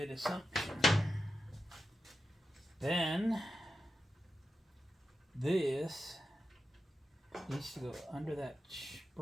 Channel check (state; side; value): normal; both; correlation 0.90